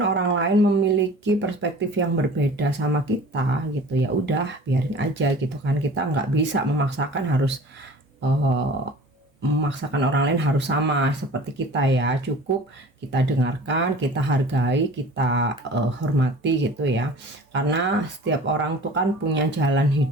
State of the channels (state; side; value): normal; both; correlation 0.43